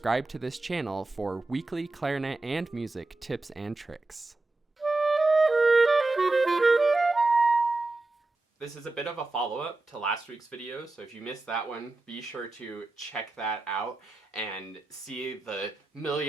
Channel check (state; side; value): quieter; left; 3.1 dB